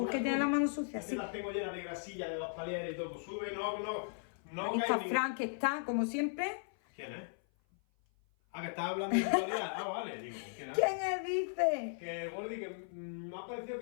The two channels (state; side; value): silent; right; 53 dB below the other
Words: tiene las manos sucias. Es que las tengo llenas de grasilla, de los palieres y todo. Pues sube, no. Ahí está Fran, que está, como siempre. ¿Quién es? Ah, que estás hablando de actualidad. Ah, vale, digo, ¿quién es? ¿Quién es, dice? Que Gordi, que me ha parecido